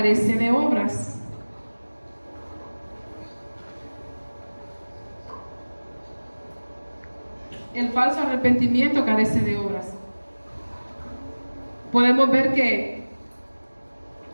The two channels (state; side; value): inverted; both; correlation -1.00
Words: de obras. El falso arrepentimiento carece de obras. Podemos ver que